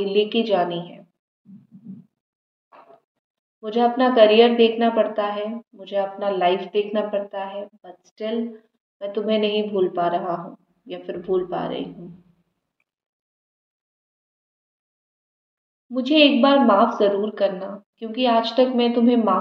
लेके जानी है। मुझे अपना करियर देखना पड़ता है, मुझे अपना लाइफ देखना पड़ता है, बट स्टिल मैं तुम्हें नहीं भूल पा रहा हूँ या फिर भूल पा रही हूँ। मुझे एक बार माफ़ ज़रूर करना, क्योंकि आज तक मैं तुम्हें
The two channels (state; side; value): identical; both; correlation 1.00